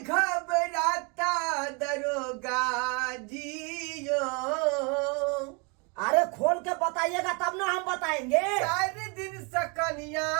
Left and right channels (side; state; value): left; quieter; 32.5 dB